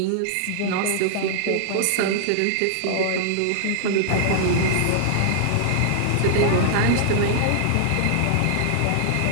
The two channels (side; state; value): both; different; correlation -0.01